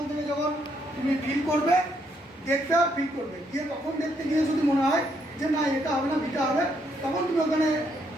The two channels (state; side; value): normal; both; correlation 0.74